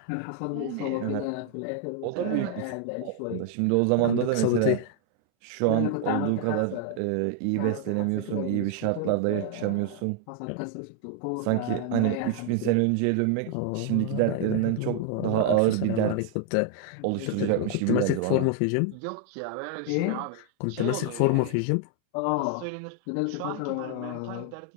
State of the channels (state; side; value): different; both; correlation 0.00